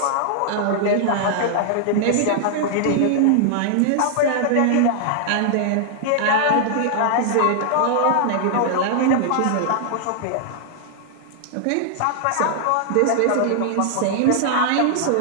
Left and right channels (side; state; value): both; different; correlation -0.01